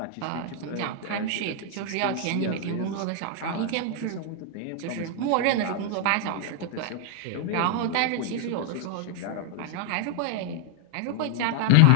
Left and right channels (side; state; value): both; different; correlation 0.00